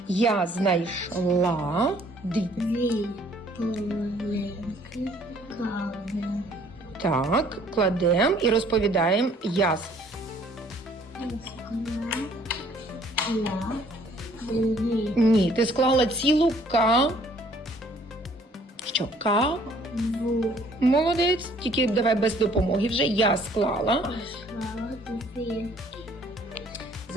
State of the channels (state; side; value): normal; both; correlation 0.59